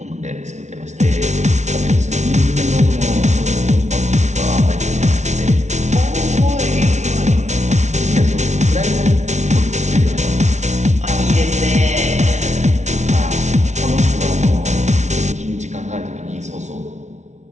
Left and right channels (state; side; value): late; left; 0.33 ms